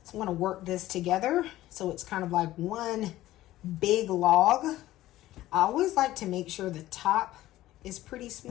So I'm going to work this together so it's kind of like one big log. I always like to make sure the top is pretty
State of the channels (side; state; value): right; quieter; 15.4 dB